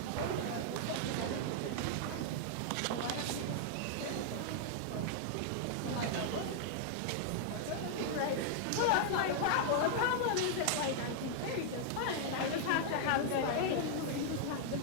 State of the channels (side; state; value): both; different; correlation -0.01